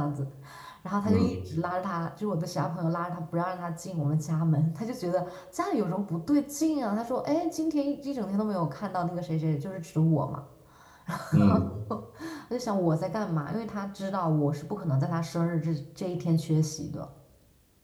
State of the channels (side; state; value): both; identical; correlation 1.00